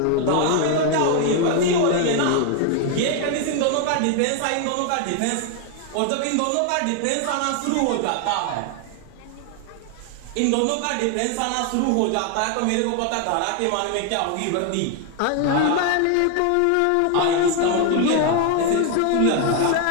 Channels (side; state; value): both; different; correlation 0.01